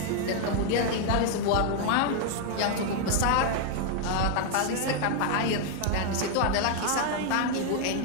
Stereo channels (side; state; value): both; different; correlation 0.00